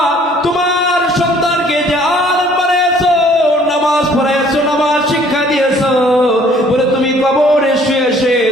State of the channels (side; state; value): both; normal; correlation 0.57